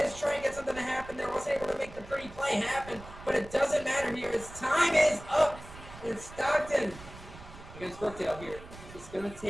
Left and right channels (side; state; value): right; noise; rumble, 16 dB below the sound